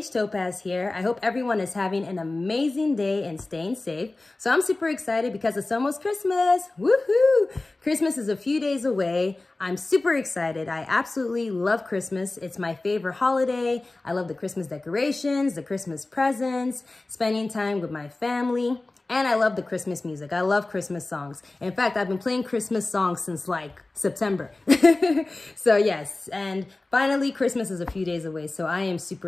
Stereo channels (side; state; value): right; quieter; 3.1 dB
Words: Topaz here. I hope everyone is having an amazing day and staying safe. So I'm super excited because it's almost Christmas. Woohoo! Christmas is a few days away. I'm super excited. I absolutely love Christmas. It's my favorite holiday. I love the Christmas decorations, the Christmas presents, spending time with my family. And I love the Christmas music. I love Christmas songs. In fact, I've been playing Christmas songs since like September. So yes, and finally Christmas is a few days away, so I am